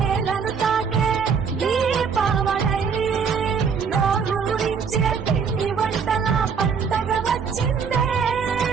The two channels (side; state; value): left; quieter; 6.2 dB